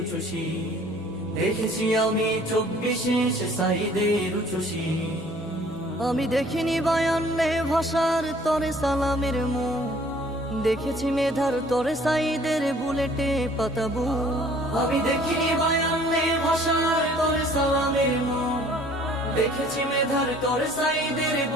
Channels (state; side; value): noise; left; rumble, 27 dB below the sound